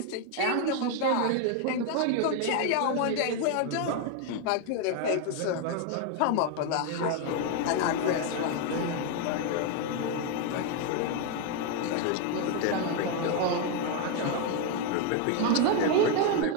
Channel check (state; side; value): different; both; correlation 0.01